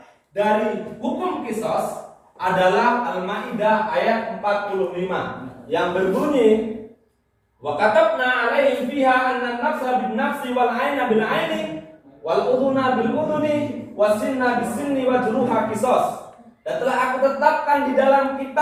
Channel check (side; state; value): both; identical; correlation 1.00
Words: dari hukum kisos adalah Al-Maidah ayat 45 yang berbunyi, wa katabna alaihim fiha anna an-nafsa bin-nafsi wal 'aina bil-'aini wal udhuna bil-udhuni was-sinna bis-sinni wa juruha qisas. Dan telah aku tetapkan di dalam